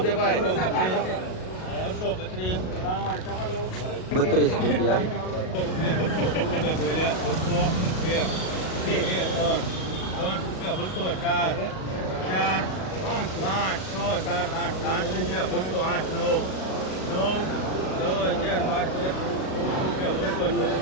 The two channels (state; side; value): late; right; 38 ms